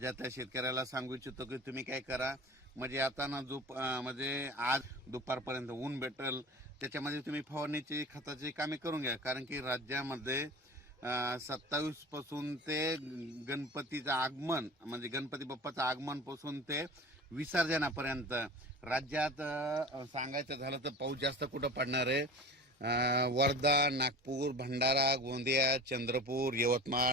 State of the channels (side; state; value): both; normal; correlation 0.37